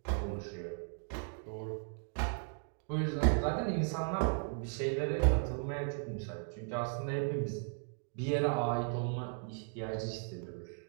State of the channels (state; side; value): silent; left; 53 dB below the other